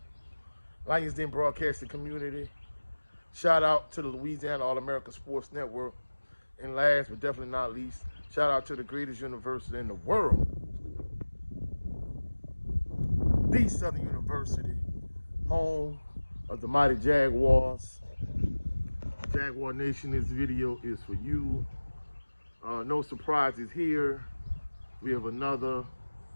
Lions Den Broadcasting Community. Shout out to the Louisiana All-America Sports Network. And last but definitely not least, shout out to the greatest university in the world, the Southern University, home of the mighty Jaguars. Jaguar Nation, this video is for you. No surprises here. We have another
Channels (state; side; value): inverted; both; correlation -1.00